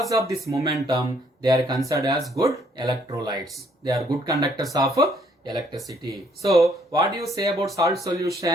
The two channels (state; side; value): normal; both; correlation 0.66